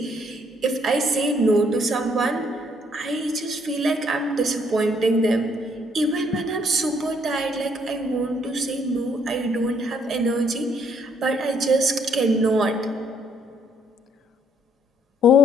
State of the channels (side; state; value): both; normal; correlation 0.67